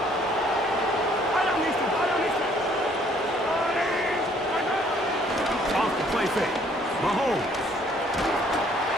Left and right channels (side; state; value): both; normal; correlation 0.62